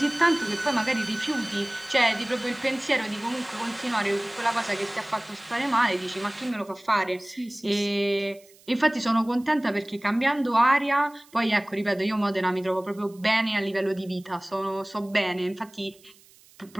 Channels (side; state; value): right; noise; hiss, 27 dB below the sound